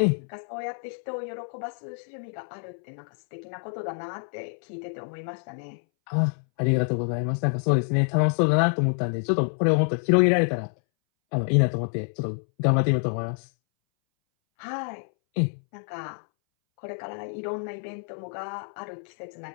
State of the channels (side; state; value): right; silent; 60 dB below the other